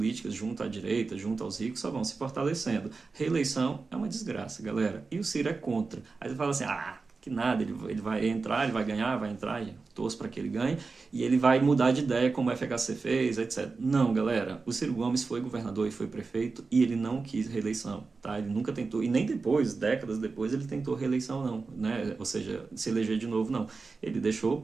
junto à direita, junto aos ricos, só vão se fortalecendo. Reeleição é uma desgraça, galera. E o Ciro é contra. Aí você fala assim, que nada, ele vai entrar, ele vai ganhar, vai entrar, torço para que ele ganhe, e ele vai mudar de ideia como o FHC fez, etc. Não, galera, o Ciro Gomes foi governador e foi prefeito e ele não quis reeleição, tá? Ele nunca tentou, e nem depois, décadas depois, ele tentou reeleição não, né? Ou seja, se eleger de novo não. Ele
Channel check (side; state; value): left; quieter; 4.3 dB